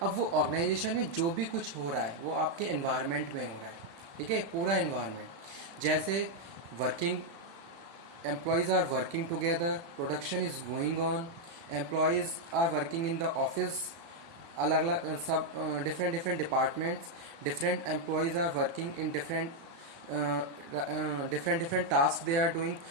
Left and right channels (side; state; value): left; late; 36 ms